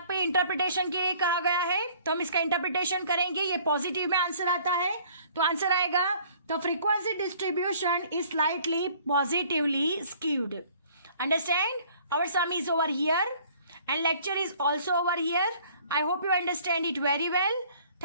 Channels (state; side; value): inverted; both; correlation -0.55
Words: पे इंटरप्रिटेशन के लिए कहा गया है, तो हम इसका इंटरप्रिटेशन करेंगे. ये पॉजिटिव में आंसर आता है, तो आंसर आएगा the frequency distribution is slightly positively skewed. Understand. Our sum is over here and lecture is also over here. I hope you understand it very well.